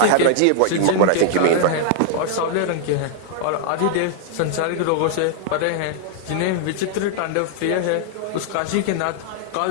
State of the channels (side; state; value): both; different; correlation -0.01